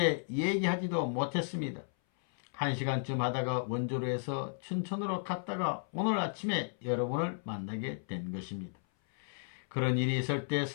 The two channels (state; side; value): silent; right; 55 dB below the other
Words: 얘기하지도 못했습니다. 1시간쯤 하다가 원조로 해서 춘천으로 갔다가 오늘 아침에 여러분을 만나게 된 것입니다. 그런 일이 있을 때